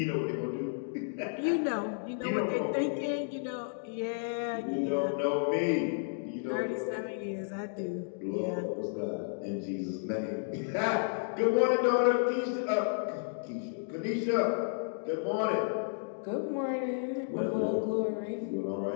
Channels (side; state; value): right; silent; digital silence